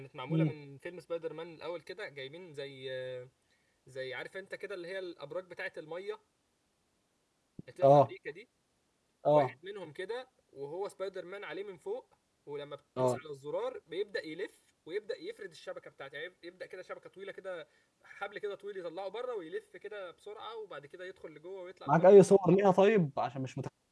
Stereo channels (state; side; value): identical; both; correlation 1.00